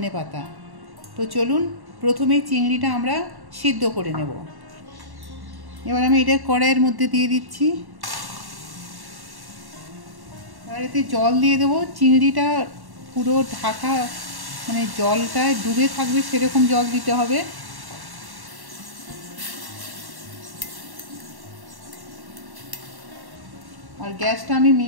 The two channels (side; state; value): left; late; 1.1 ms